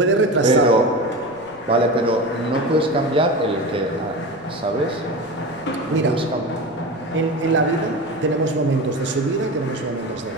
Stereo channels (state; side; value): noise; right; rumble, 29 dB below the sound